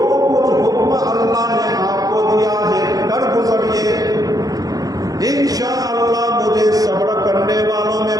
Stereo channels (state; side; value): late; left; 0.18 ms